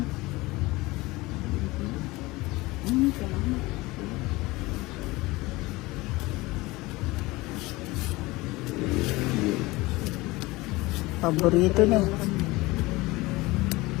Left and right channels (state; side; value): quieter; right; 21.3 dB